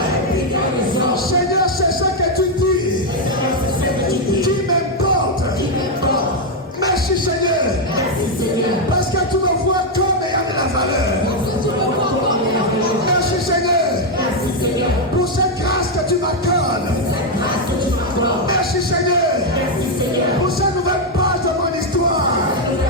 Seigneur, c'est ça que tu dis qui m'importe. Merci Seigneur, parce que tu me vois comme ayant de la valeur. Merci Seigneur pour cette grâce que tu m'accordes. Merci Seigneur pour cette nouvelle page de mon histoire.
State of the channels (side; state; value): both; normal; correlation 0.02